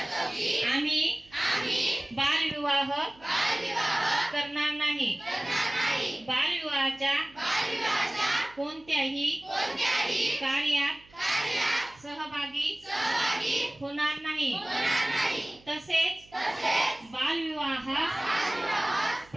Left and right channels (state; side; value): noise; right; hum, 27 dB below the sound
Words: आम्ही बालविवाह करणार नाही। बालविवाहाच्या कोणत्याही कार्यात सहभागी होणार नाही। तसेच बालविवाह